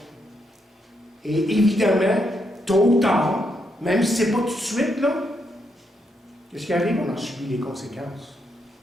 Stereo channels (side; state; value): both; normal; correlation 0.79